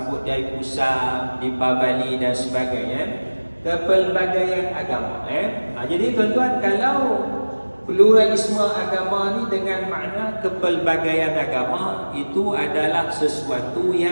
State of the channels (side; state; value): both; inverted; correlation -1.00